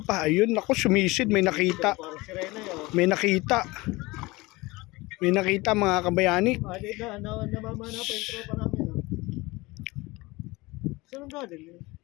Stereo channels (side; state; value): right; quieter; 22.2 dB